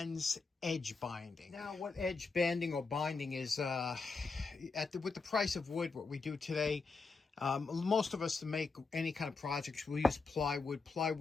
edge binding. Now, what edge banding or binding is, with the price of wood, what we do today, most of us to make any kind of projects, we'll use plywood.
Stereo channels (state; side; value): quieter; right; 4.3 dB